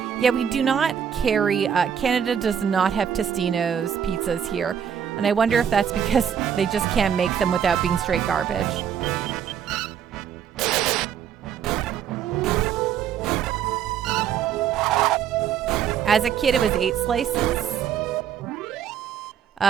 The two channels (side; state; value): left; quieter; 8.5 dB